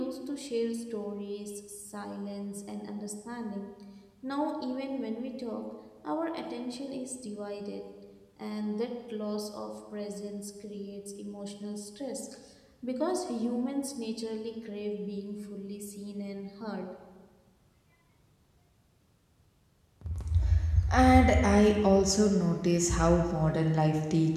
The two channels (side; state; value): both; identical; correlation 1.00